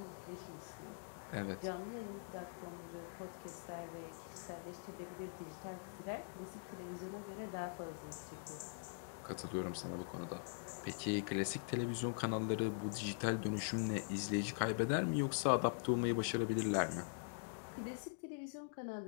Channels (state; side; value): silent; right; digital silence